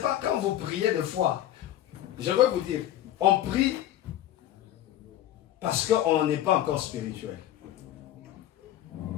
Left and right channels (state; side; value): quieter; right; 12.6 dB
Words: quand vous priez de foi. Je veux vous dire, on prie parce qu'on n'est pas encore spirituel.